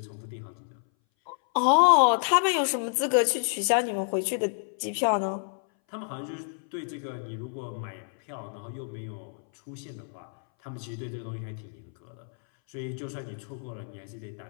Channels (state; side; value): silent; right; 59 dB below the other